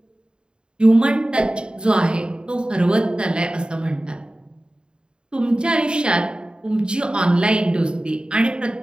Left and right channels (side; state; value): left; late; 0.050 ms